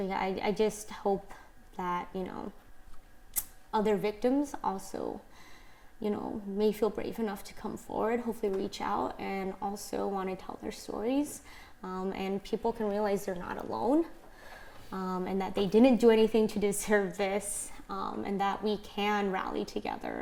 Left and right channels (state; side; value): identical; both; correlation 1.00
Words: I just hope that, other victims also, may feel brave enough to come forward, hopefully reach out, and also want to tell their stories. And people can realize they're not alone, and that they didn't do anything to deserve this, and that we can rally